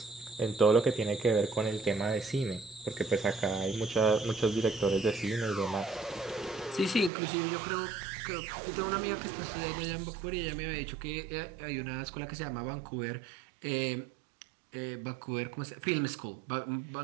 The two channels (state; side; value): drops out; left; at 7.1 s